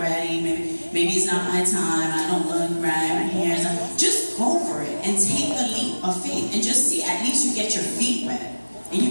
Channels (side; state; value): both; inverted; correlation -1.00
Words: maybe it's not my time, I don't look right, my hair's not. Just go for it and take the leap of faith and just see, at least you get your feet wet and